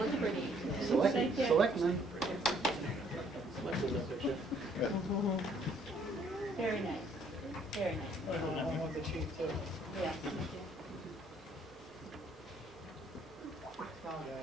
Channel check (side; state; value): both; normal; correlation 0.64